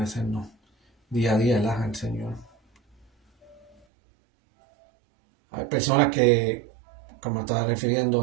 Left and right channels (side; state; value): left; drops out; at 3.8 s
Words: día a día al Señor. Hay personas que, como estaba refiriendo